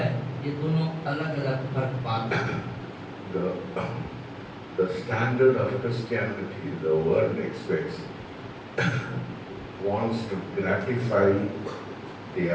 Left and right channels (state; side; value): identical; both; correlation 1.00